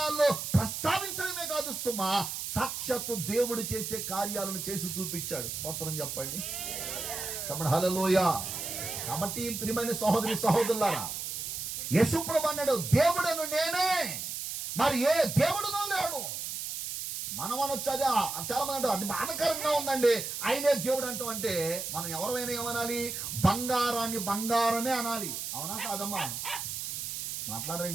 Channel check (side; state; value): right; noise; hiss, 5 dB below the sound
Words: ప్రస్తావించడమే కాదు సుమా, సాక్షాత్తు దేవుడు చేసే కార్యాలను చేసి చూపించాడు. స్తోత్రం చెప్పండి. కాబట్టి హల్లెలూయా. కాబట్టి ప్రియమైన సహోదరి సహోదరులారా, యేసు ప్రభువు అన్నాడు, దేవుడను నేనే, మరి ఏ దేవుడునో లేడు. మనం అనొచ్చు, అది చాలా మంది అంటారు అది బాధకరంగా ఉందండి, ఆయనే దేవుడు అంటాం. అంటే మనం ఎవరైనా ఏమనాలి? బంగారాన్ని బంగారమే అనాలి. అవునా కాదమ్మా?